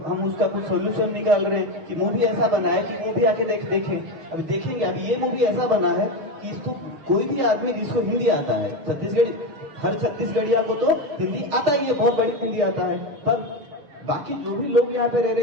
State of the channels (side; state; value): left; late; 6.6 ms